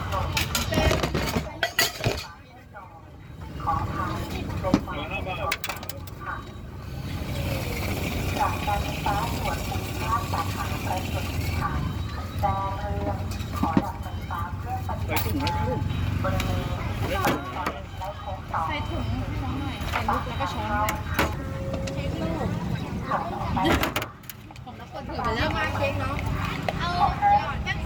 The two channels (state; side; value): identical; both; correlation 1.00